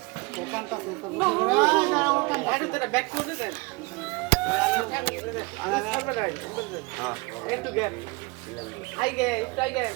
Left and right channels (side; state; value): left; quieter; 26.3 dB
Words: দোকানটা ব্যাক করে দেন একটু গ্যাপ